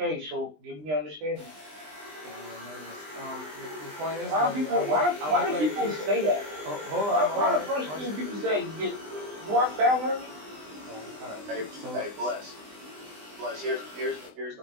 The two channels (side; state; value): left; late; 20 ms